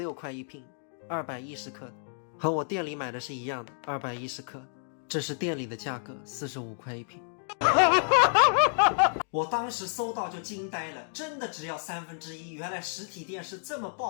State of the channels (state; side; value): silent; right; 56 dB below the other